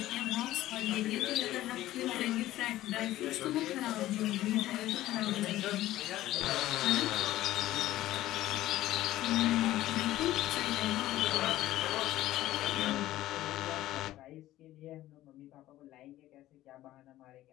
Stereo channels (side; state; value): right; quieter; 15.0 dB